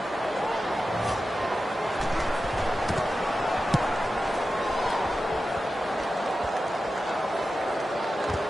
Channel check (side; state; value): both; normal; correlation 0.93